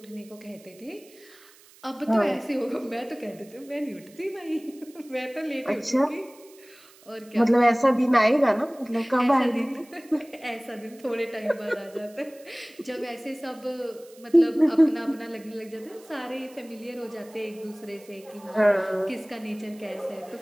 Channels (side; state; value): right; noise; hiss, 25 dB below the sound